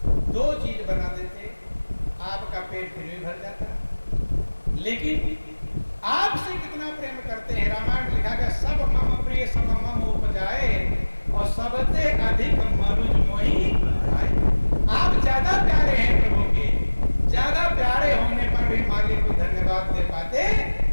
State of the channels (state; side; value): inverted; both; correlation -1.00